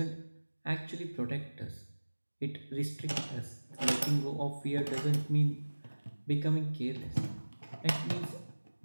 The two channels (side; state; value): both; inverted; correlation -1.00